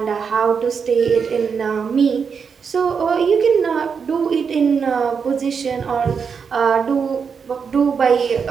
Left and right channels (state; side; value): quieter; left; 6.1 dB